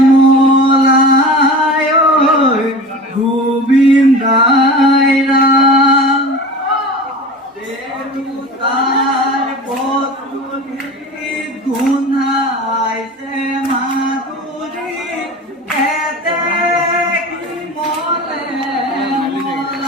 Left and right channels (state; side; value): normal; both; correlation 0.34